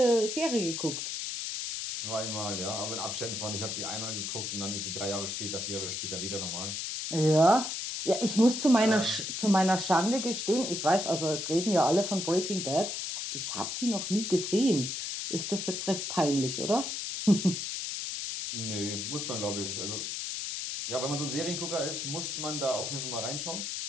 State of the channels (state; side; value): noise; left; hiss, 4 dB below the sound